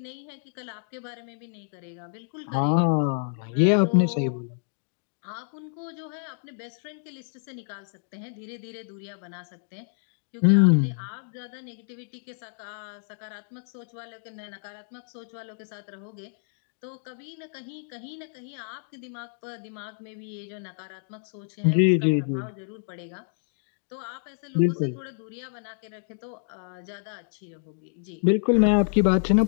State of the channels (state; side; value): silent; right; digital silence